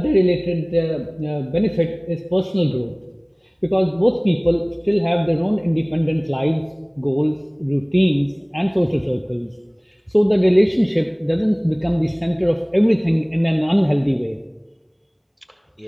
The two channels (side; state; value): both; identical; correlation 1.00